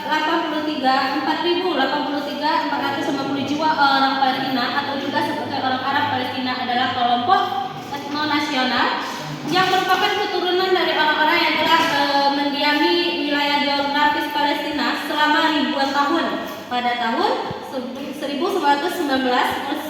jiwa orang Palestina, atau juga sebagai orang Arab Palestina, adalah kelompok etnonasional yang merupakan keturunan dari orang-orang yang telah mendiami wilayah geografis Palestina selama ribuan tahun. Pada tahun 1919,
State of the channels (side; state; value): both; identical; correlation 1.00